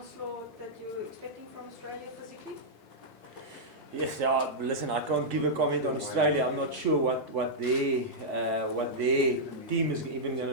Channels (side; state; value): both; normal; correlation -0.09